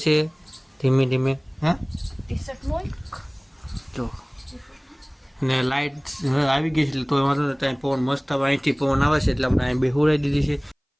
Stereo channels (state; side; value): identical; both; correlation 1.00